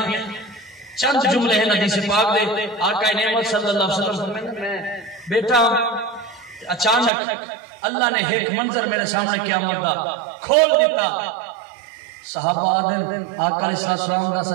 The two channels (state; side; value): drops out; left; at 7.1 s